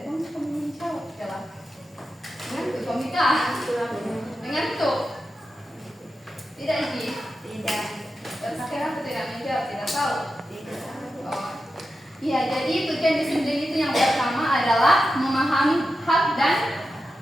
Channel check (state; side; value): normal; both; correlation 0.90